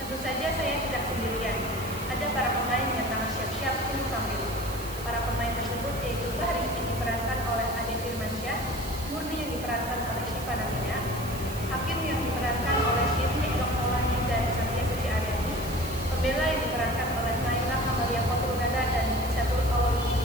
Tentu saja saya tidak sendirian. Ada para pemain yang tengah siap-siap untuk tampil. Para pemain tersebut yaitu Bahri yang diperankan oleh Ade Firmansyah, Murni yang diperankan oleh Syifa Namina, Hakim yang diperankan oleh Syirni Elok Maulani dan Satya Suci Aryani, Pembela yang diperankan oleh Naila Kamalia Kotrunada dan Syatul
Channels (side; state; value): right; noise; hiss, 13 dB below the sound